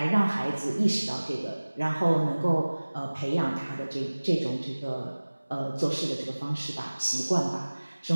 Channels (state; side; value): inverted; both; correlation -1.00